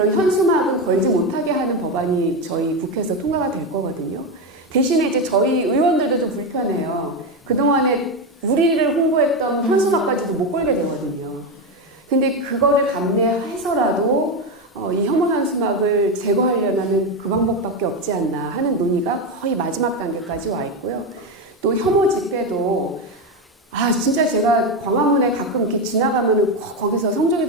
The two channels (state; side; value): normal; both; correlation 0.13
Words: 현수막은 걸지 못하게 하는 법안이 저희 국회에서 통과가 될 거거든요. 대신에 이제 저희 의원들도 좀 불편해요. 그동안에 우리를 홍보했던 현수막까지도 못 걸게 되거든요. 근데 그거를 감내해서라도 이 혐오 현수막을 제거하려면 그 방법밖에 없지 않나 하는 논의가 거의 마지막 단계까지 와 있고요. 또 혐오 집회도 진짜 제가 광화문에 가끔 이렇게 지나가면은 거기서 성조기